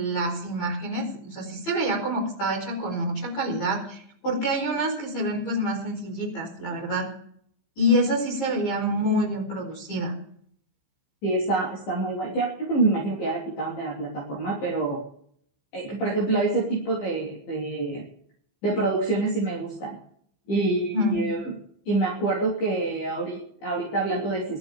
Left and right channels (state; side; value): late; right; 15 ms